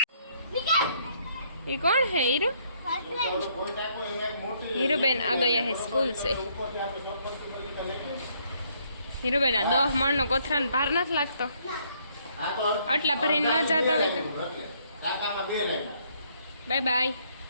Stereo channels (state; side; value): inverted; both; correlation -0.68